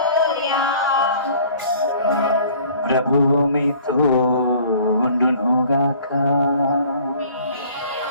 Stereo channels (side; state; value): both; inverted; correlation -0.52